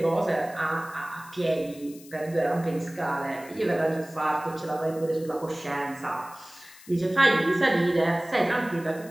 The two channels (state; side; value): noise; left; hiss, 21 dB below the sound